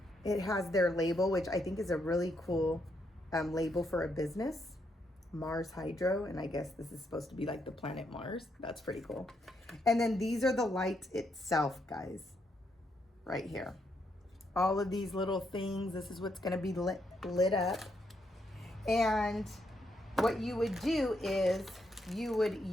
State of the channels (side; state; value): both; normal; correlation 0.78